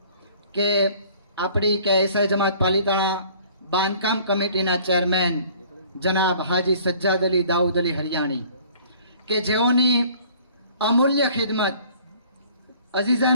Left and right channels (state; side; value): inverted; both; correlation -0.53